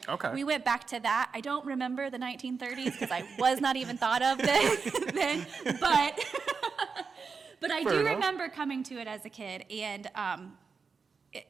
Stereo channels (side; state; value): left; quieter; 5.2 dB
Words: Okay. we went back to that. I don't remember the 1930s because I was not even thought of then, but but I Fair do enough. remember coming to it as a kid, and